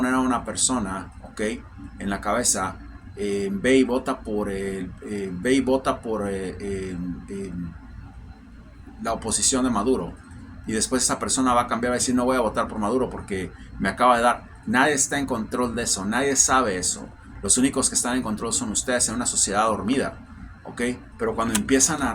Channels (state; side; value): identical; both; correlation 1.00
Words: a una persona, ¿ok?, en la cabeza, ve y vota por, la oposición de Maduro. Y después esa persona va a cambiar, va a decir, no voy a votar por Maduro porque me acaba de dar. Nadie está en control de eso, nadie sabe eso. Los únicos que están en control son ustedes en una sociedad dormida, ¿ok? Pero cuando empiezan a